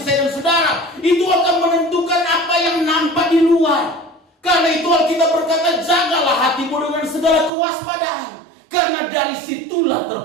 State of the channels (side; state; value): left; drops out; at 7.5 s